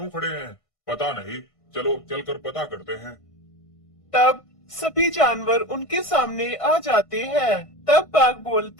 खड़े हैं? पता नहीं, चलो चलकर पता करते हैं। तब सभी जानवर उनके सामने आ जाते हैं। तब बाघ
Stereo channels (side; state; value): right; late; 1.5 ms